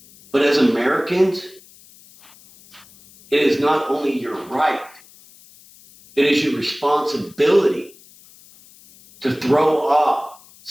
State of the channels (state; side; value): noise; left; hiss, 25 dB below the sound